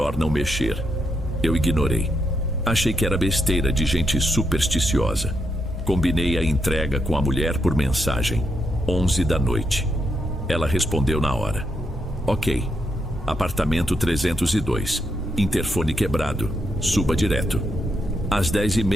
não mexer. Eu ignorei. Achei que era besteira de gente supersticiosa. Combinei a entrega com a mulher por mensagem. 11 da noite. Ela respondeu na hora. Ok. Apartamento 302. Interfone quebrado. Suba direto. Às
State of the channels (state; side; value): normal; both; correlation 0.80